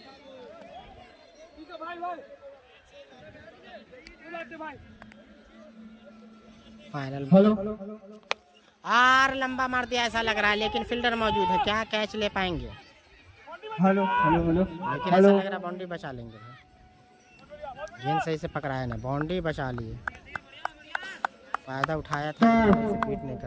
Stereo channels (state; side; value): identical; both; correlation 1.00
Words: final hello और लंबा मार दिया ऐसा लग रहा है, लेकिन फील्डर मौजूद है, क्या कैच ले पाएंगे? हेलो हेलो हेलो लेकिन ऐसा लग रहा है बाउंड्री बचा लेंगे। गेंद सही से पकड़ाया ना, बाउंड्री बचा लिए। फायदा उठाया था, बीट नहीं कर